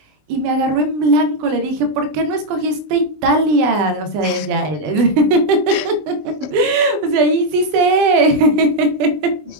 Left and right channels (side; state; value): left; late; 20 ms